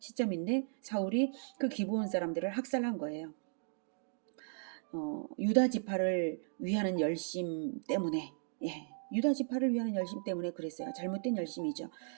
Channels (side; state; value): left; silent; digital silence